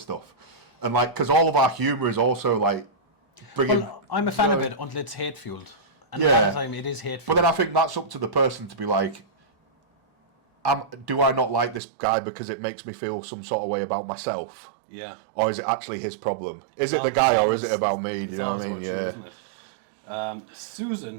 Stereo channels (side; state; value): left; drops out; at 11.8 s